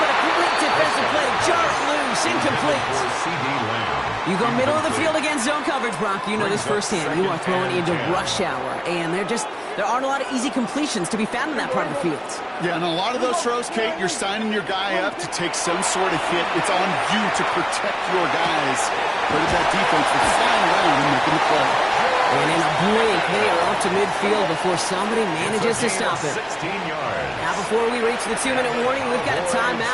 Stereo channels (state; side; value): identical; both; correlation 1.00